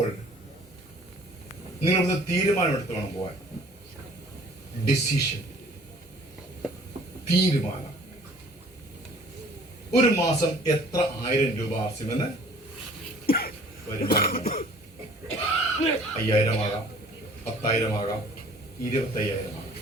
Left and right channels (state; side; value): normal; both; correlation 0.52